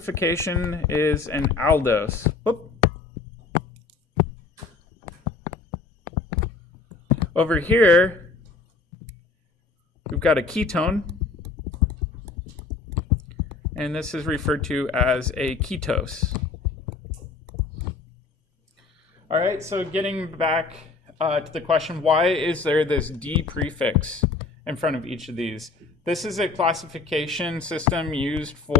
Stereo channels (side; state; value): right; quieter; 4.0 dB